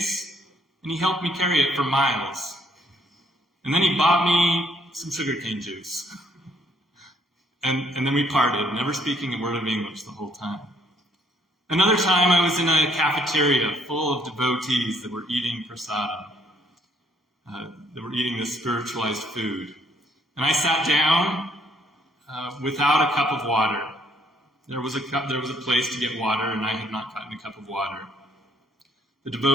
and he helped me carry it for miles. And then he bought me some sugarcane juice. And then we parted, never speaking a word of English the whole time. Another time I was in a cafeteria full of devotees that were eating prasadam, that were eating this spiritualized food. And I sat down without a cup of water. There was a place to get water, and I had not gotten a cup of water. The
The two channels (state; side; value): normal; both; correlation 0.66